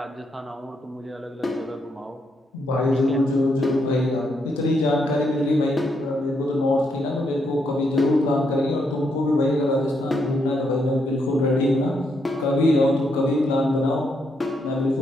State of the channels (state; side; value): normal; both; correlation 0.78